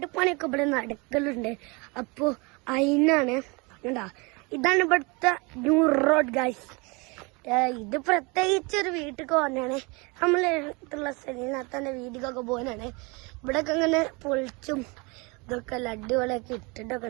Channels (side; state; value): left; quieter; 28.2 dB